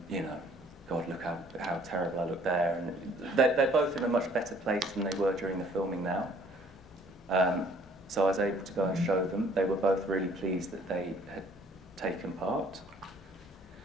you know, God, look how a much better place than they were during the filming now. So I was able to go and show them. They were both really pleased that they had taken part.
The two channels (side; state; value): both; normal; correlation 0.58